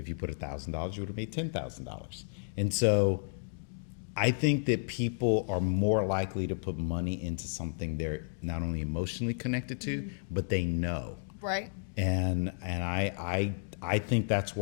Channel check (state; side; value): silent; right; digital silence